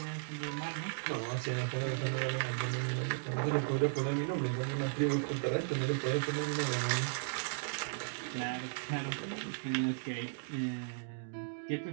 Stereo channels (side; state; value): left; silent; digital silence